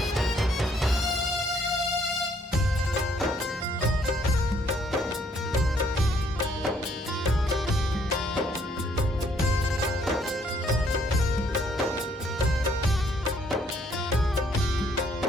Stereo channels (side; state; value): both; normal; correlation 0.66